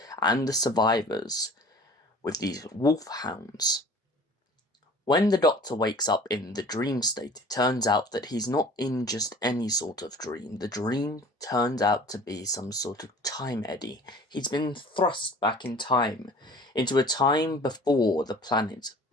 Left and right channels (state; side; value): normal; both; correlation 0.46